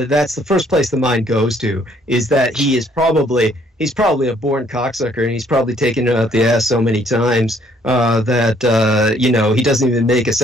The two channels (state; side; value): normal; both; correlation 0.64